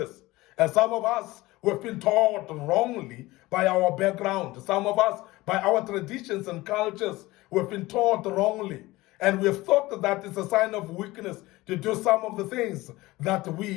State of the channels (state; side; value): quieter; right; 19.5 dB